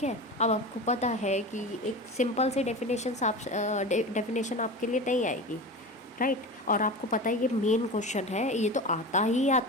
है। अब आपको पता है कि एक सिंपल सी डेफिनेशन आपके लिए नहीं आएगी, राइट। और आपको पता है ये मेन क्वेश्चन है, ये तो आता ही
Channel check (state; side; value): normal; both; correlation 0.29